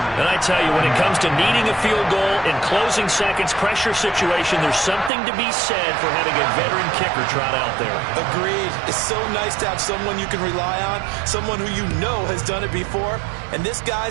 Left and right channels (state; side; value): drops out; left; at 5.1 s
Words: And I tell you, when it comes to needing a field goal in closing seconds, pressure situation, there's something to be said for having a veteran kicker trot out there. Agreed. It's so nice to have someone you can rely on, someone who you know has done it before. And this